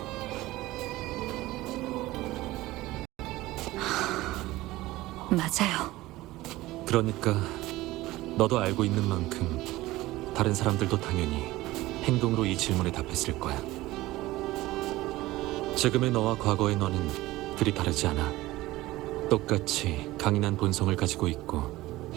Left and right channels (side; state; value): left; quieter; 18.0 dB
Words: 맞아요. 그러니까 너도 알고 있는 만큼 다른 사람들도 당연히 행동으로 이 질문에 답했을 거야. 지금의 너와 과거의 너는 그리 다르지 않아. 똑같이 강인한 본성을 가지고 있고